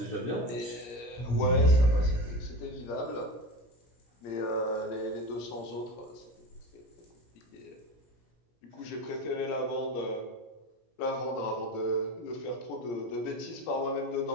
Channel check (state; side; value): late; right; 17 ms